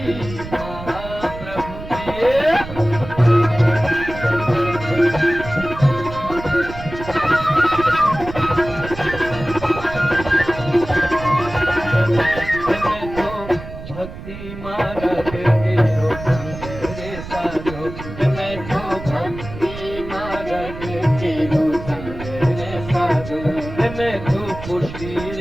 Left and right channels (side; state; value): right; noise; rumble, 12 dB below the sound